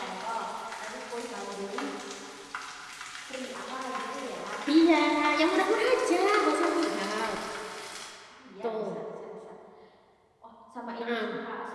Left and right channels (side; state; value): both; identical; correlation 1.00